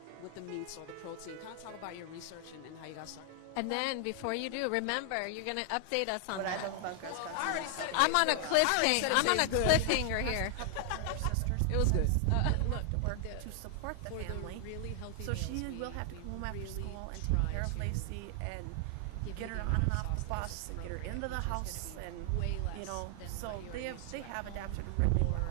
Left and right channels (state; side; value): different; both; correlation 0.00